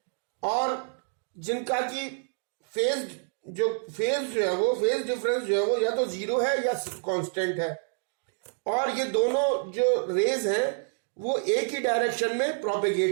और जिनका की फेज जो है वो फेज डिफरेंस जो है वो या तो जीरो है या कांस्टेंट है, और ये दोनों जो रेज हैं वो एक ही डायरेक्शन में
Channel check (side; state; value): left; silent; digital silence